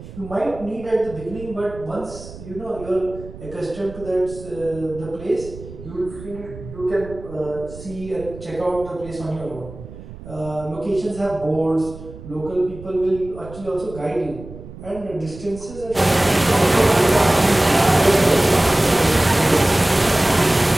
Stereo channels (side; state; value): right; noise; rumble, 15 dB below the sound